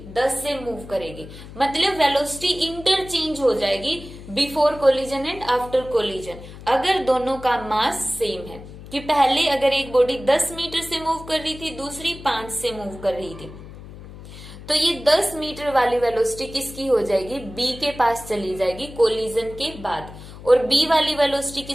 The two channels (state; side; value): noise; left; hum, 15 dB below the sound